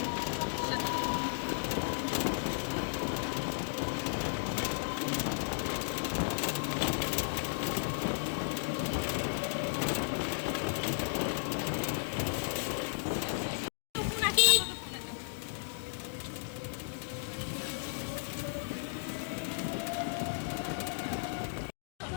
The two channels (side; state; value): right; silent; digital silence